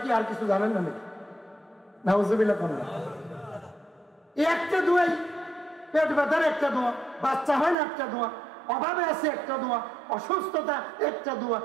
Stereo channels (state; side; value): drops out; left; at 7.8 s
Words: কি আর কিছু জানেন না নাকি? নাউজুবিল্লাহ কোন না। এই একটা দোয়াই, পেট ব্যথার একটা দোয়া, বাচ্চা হয় না একটা দোয়া, অভাবে আছে একটা দোয়া, অসুস্থতা একটা দোয়া,